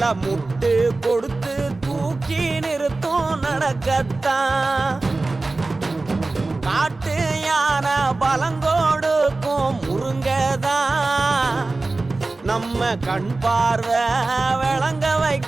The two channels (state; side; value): quieter; left; 3.3 dB